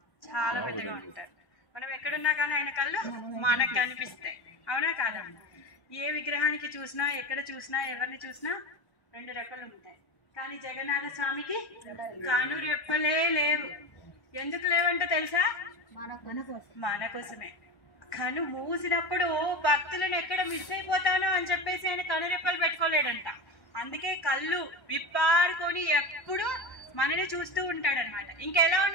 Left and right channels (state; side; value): late; right; 1.1 ms